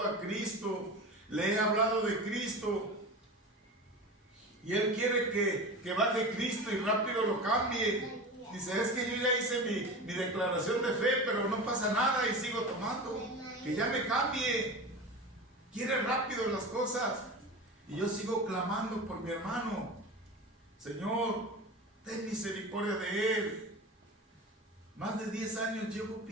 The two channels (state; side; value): normal; both; correlation 0.30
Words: a Cristo, le he hablado de Cristo y él quiere que baje Cristo y rápido lo cambie. Dice, es que yo ya hice mi declaración de fe, pero no pasa nada y sigo tomando, que ya me cambie. Quiere rápido las cosas. Y yo sigo clamando por mi hermano. Señor, ten misericordia de él. Más de 10 años llevo